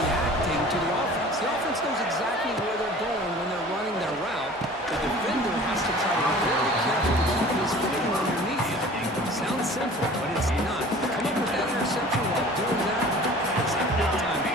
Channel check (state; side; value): normal; both; correlation 0.45